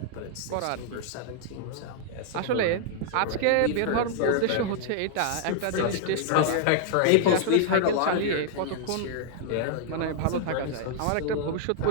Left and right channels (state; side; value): different; both; correlation -0.01